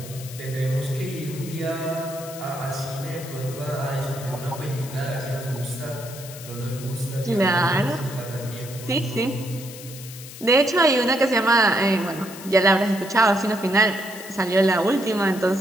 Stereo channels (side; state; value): left; noise; hiss, 14 dB below the sound